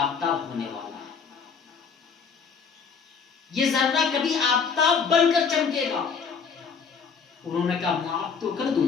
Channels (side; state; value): right; quieter; 5.9 dB